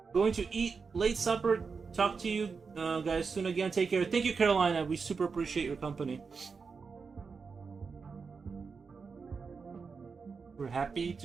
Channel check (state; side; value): quieter; left; 5.1 dB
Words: Going to eat late supper. Talk to you guys soon again. Take care. Thank you, Carolina. We super appreciate your company. We're happy